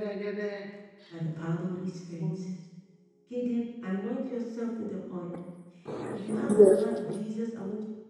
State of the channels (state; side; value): identical; both; correlation 1.00